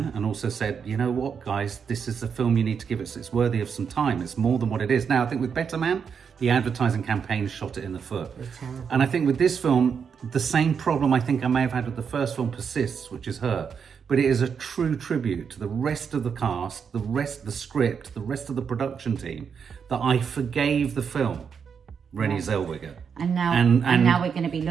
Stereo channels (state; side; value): quieter; left; 6.7 dB